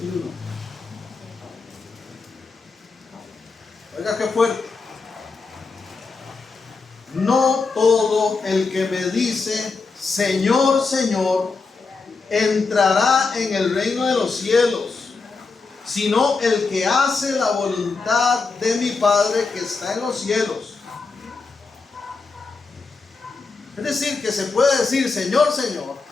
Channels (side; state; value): right; quieter; 4.3 dB